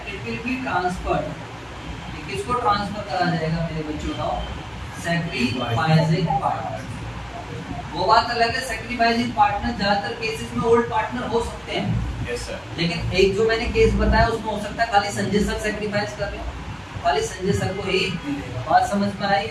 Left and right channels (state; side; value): identical; both; correlation 1.00